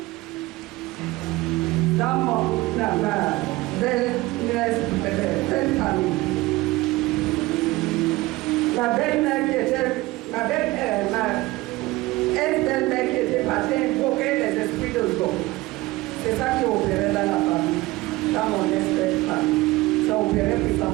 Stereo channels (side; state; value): left; quieter; 19.9 dB